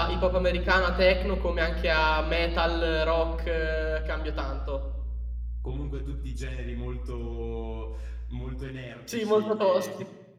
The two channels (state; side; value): identical; both; correlation 1.00